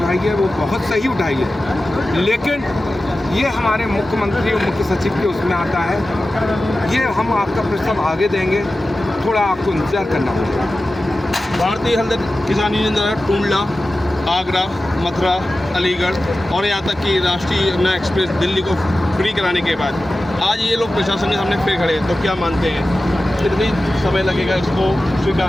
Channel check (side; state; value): both; normal; correlation 0.94